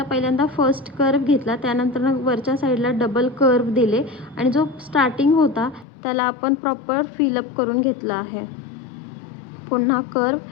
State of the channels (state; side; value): drops out; right; at 5.9 s